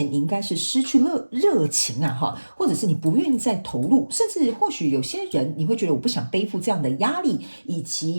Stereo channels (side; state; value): both; inverted; correlation -1.00